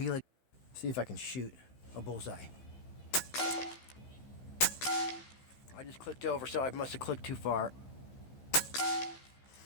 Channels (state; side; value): late; right; 15 ms